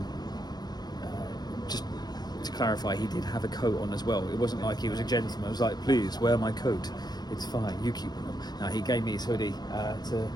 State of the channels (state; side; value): late; right; 0.19 ms